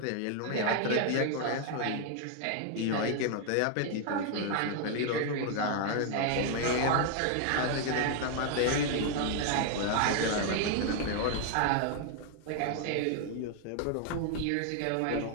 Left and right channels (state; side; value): different; both; correlation 0.00